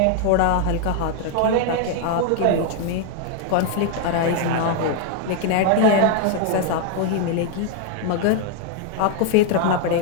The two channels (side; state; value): both; different; correlation 0.00